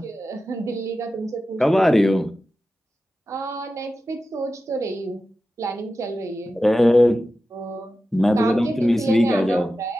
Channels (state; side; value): normal; both; correlation 0.93